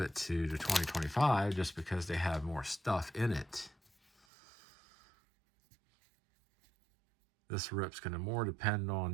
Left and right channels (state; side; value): drops out; left; at 4.2 s